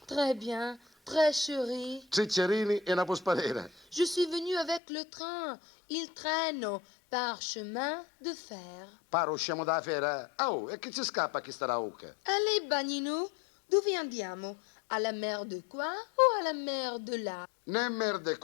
très bien, très chérie. ciccerini e una posparera. Je suis venue avec le train. Il traîne par chemin de fer. Paro usciamo da fera. Oh, e che ci scappa chi sta ucca? Allez, Bagnino, dove andiamo? Alla mer de qua o alla mer de là? Né merde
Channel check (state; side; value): drops out; right; at 4.8 s